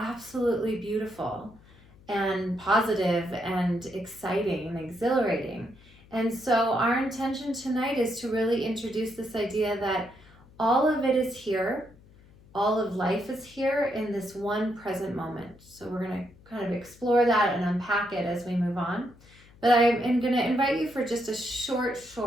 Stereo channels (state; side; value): noise; left; hum, 25 dB below the sound